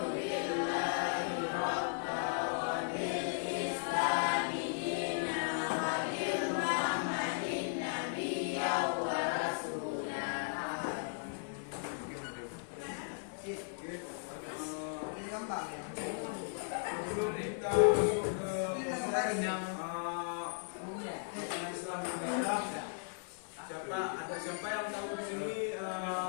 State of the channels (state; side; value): silent; right; digital silence